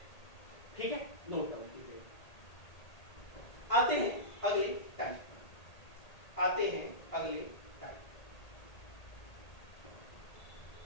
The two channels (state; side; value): late; right; 1.8 ms